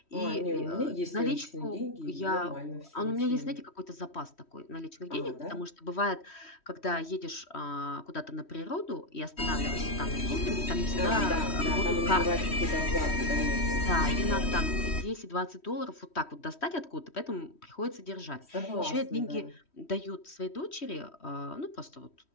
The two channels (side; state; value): right; late; 3.1 ms